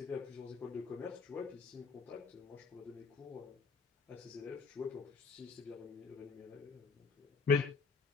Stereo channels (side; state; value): right; quieter; 4.9 dB